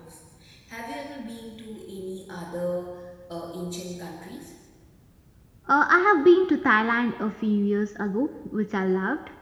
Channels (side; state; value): both; identical; correlation 1.00